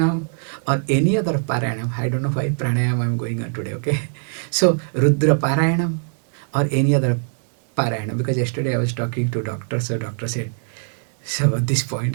or any other parayanam. I don't know why pranayam I'm going on today, okay? So Rudra parayanam or any other parayanam, because yesterday I was talking to doctor, so doctor said, so at this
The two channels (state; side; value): silent; left; 65 dB below the other